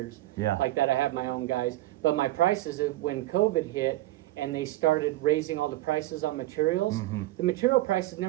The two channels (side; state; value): left; quieter; 16.7 dB